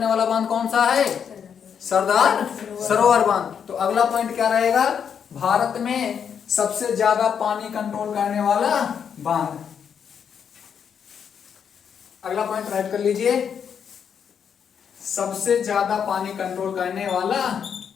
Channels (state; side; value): quieter; right; 7.5 dB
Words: वाला बांध कौन सा है? सरदार सरोवर बांध। तो अगला पॉइंट क्या रहेगा? भारत में सबसे ज्यादा पानी कंट्रोल करने वाला बांध। अगला पॉइंट राइट कर लीजिए, सबसे ज्यादा पानी कंट्रोल करने वाला